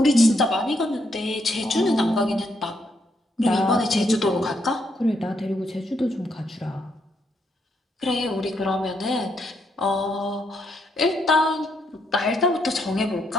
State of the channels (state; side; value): normal; both; correlation 0.76